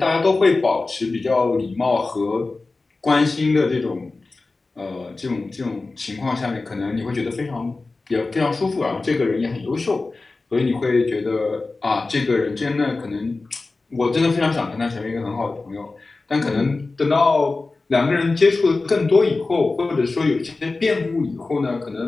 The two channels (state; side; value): quieter; right; 3.6 dB